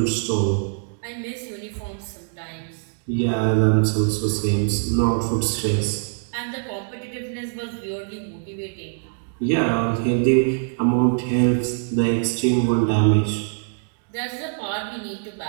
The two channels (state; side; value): silent; left; digital silence